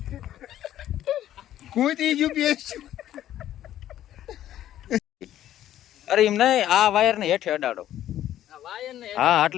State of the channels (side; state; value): right; quieter; 12.3 dB